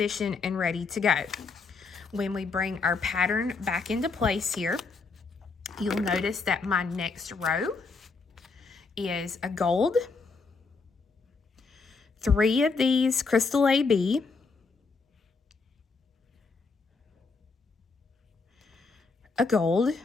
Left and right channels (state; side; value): quieter; right; 4.4 dB